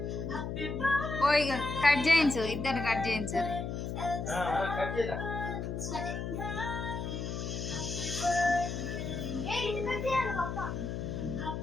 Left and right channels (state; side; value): noise; left; hum, 4 dB below the sound